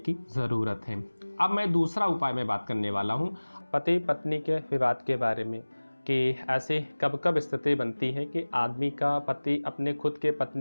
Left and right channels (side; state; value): both; inverted; correlation -1.00